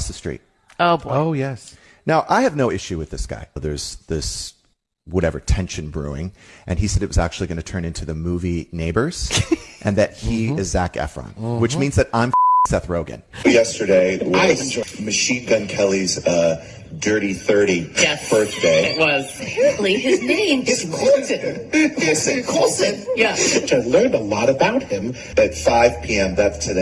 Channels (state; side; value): identical; both; correlation 1.00